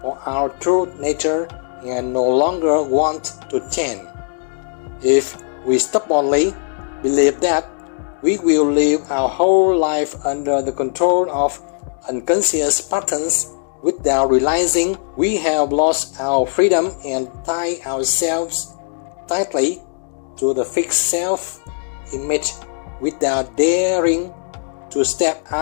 for our true nature and no longer want to change. If we stubbornly believe that we will live our whole life under the control of unconscious patterns without realizing we have lost our freedom and tie ourselves tightly to the fixed self-image without daring to step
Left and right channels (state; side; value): silent; right; digital silence